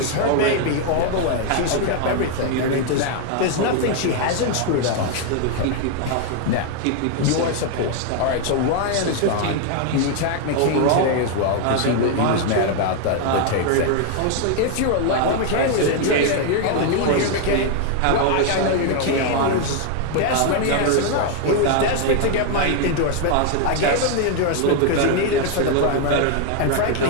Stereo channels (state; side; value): different; both; correlation 0.00